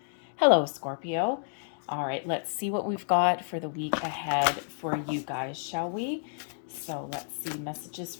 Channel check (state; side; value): silent; right; digital silence